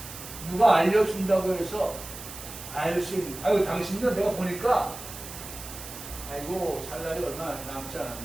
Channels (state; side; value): noise; right; hiss, 12 dB below the sound